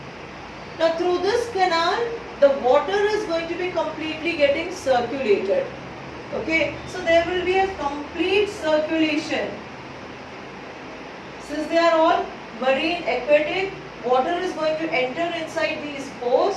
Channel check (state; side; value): identical; both; correlation 1.00